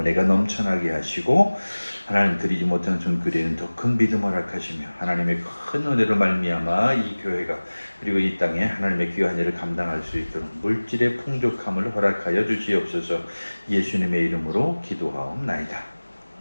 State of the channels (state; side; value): inverted; both; correlation -1.00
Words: 넘쳐나게 하시고 하나님 드리지 못한 손길에는 더 큰 믿음을 허락하시며 하나님의 큰 은혜로 말미암아 이 교회가 그리고 이 땅에 하나님의 귀한 일을 감당할 수 있도록 물질의 풍족함을 허락하여 주시옵소서. 예수님의 이름으로 기도하옵나이다.